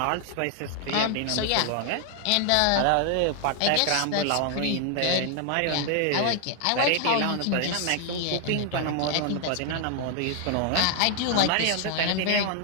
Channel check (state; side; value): different; both; correlation 0.00